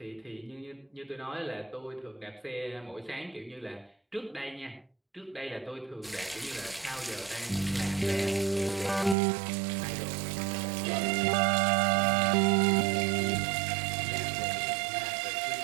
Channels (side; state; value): left; drops out; at 9.2 s